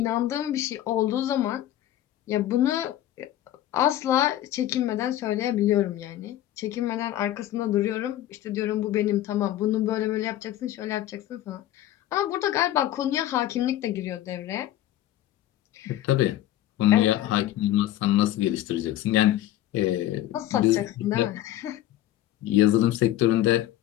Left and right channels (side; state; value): right; quieter; 13.3 dB